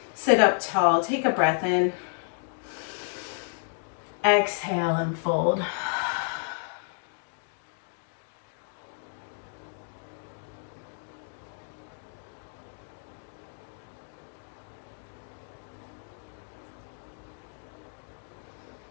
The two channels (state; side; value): silent; right; 57 dB below the other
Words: Sit up tall. Take a breath in. Exhale and fold.